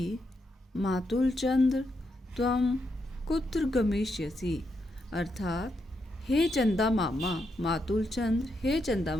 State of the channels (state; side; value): normal; both; correlation 0.82